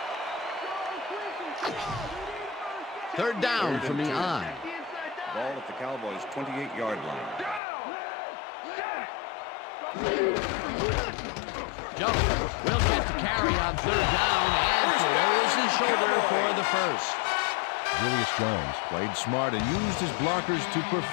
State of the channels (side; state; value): right; drops out; at 7.6 s